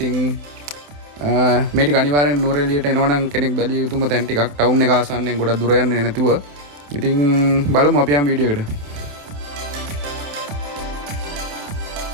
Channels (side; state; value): left; late; 28 ms